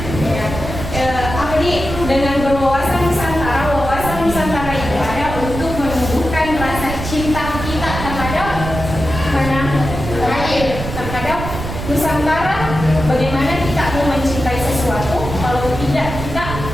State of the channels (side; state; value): right; noise; rumble, 7 dB below the sound